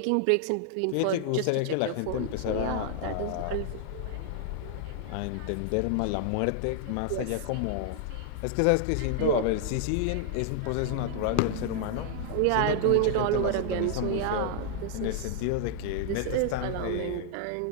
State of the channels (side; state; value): both; different; correlation -0.01